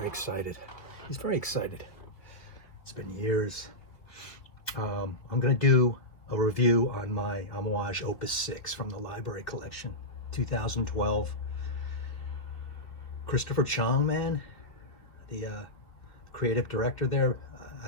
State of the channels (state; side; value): late; right; 3.0 ms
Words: excited. He's very excited. It's been years. I'm gonna do a review on my Amouage Opus 6 from the library collection, 2012. Christopher Chong, man, the creative director there,